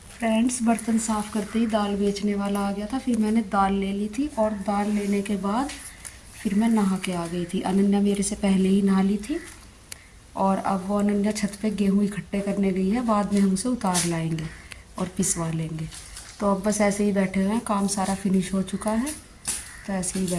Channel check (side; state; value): both; identical; correlation 1.00